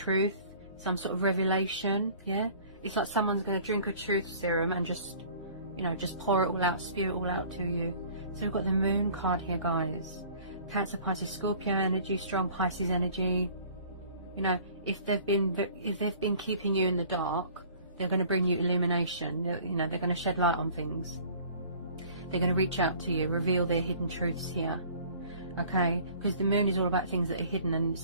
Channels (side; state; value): both; inverted; correlation -0.50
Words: some sort of revelation. Yeah, it's like someone's going to drink a truth serum and just, you know, just pour it all out, spew it all out to you. So we've got the Moon card here, guys. Cancer, Pisces, Scorpio energy, strong Pisces energy. You know, if they've been keeping you in the dark, they're going to bring you illumination. You know, they're going to shed light on things. They're going to reach out to you, reveal their hidden truths here. Okay, because the Moon is all about things that are hidden and